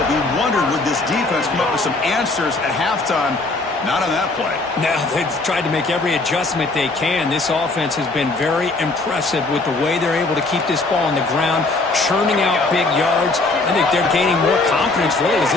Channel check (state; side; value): quieter; right; 3.3 dB